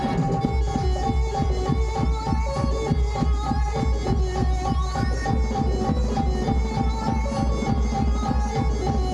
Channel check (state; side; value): identical; both; correlation 1.00